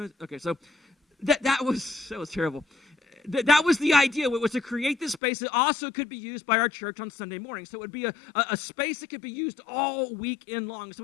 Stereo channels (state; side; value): drops out; right; at 5.2 s